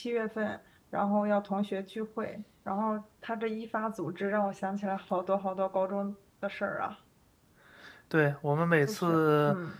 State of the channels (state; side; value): identical; both; correlation 1.00